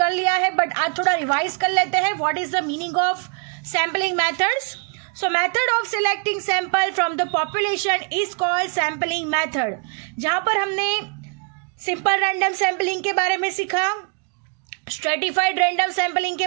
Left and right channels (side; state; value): left; quieter; 37.5 dB